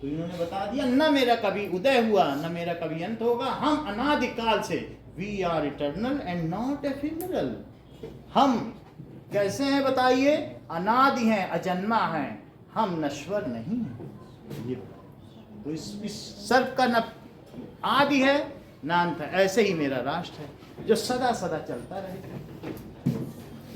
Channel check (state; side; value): identical; both; correlation 1.00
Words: तो इन्होंने बता दिया, न मेरा कभी उदय हुआ न मेरा कभी अंत होगा, हम अनादिकाल से, we are eternal and not ephemeral. हम कैसे हैं बताइए, अनादि हैं, अजन्मा हैं, हम नश्वर नहीं हैं। ये तो इस सर्व का न आदि है न अंत है, ऐसे ही मेरा राष्ट्र है जो सदा सदा चलता रहे।